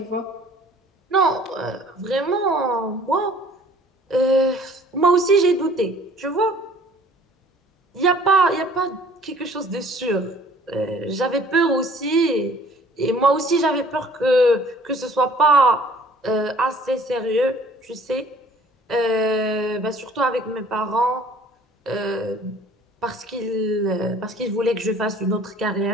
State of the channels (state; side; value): normal; both; correlation 0.53